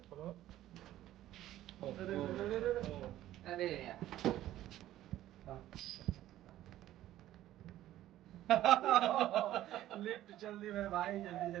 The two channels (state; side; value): quieter; left; 13.7 dB